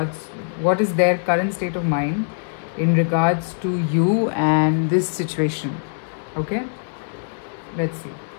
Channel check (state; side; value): silent; right; digital silence